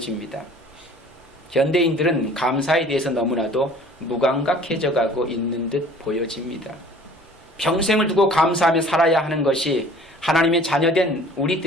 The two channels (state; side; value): normal; both; correlation 0.49